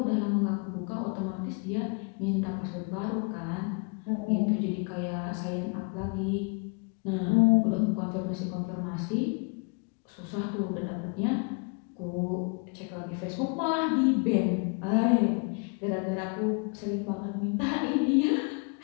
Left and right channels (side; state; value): right; quieter; 35.2 dB